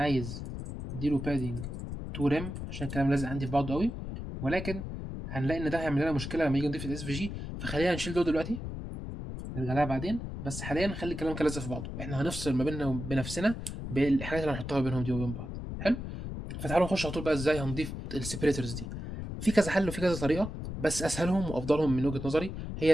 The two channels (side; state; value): left; noise; rumble, 7 dB below the sound